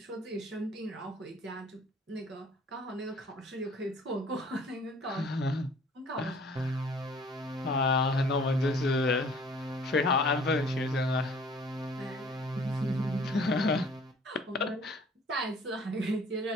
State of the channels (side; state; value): both; normal; correlation 0.53